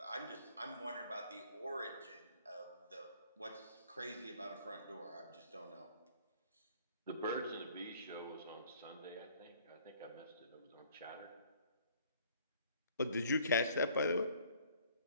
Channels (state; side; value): inverted; both; correlation -0.57